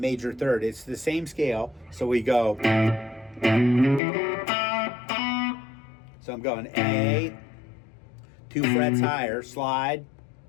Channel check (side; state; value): right; drops out; at 4.0 s